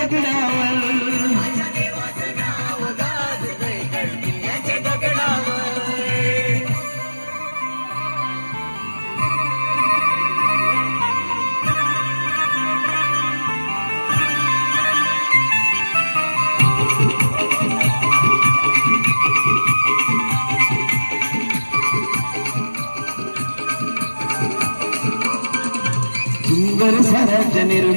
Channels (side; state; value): both; inverted; correlation -1.00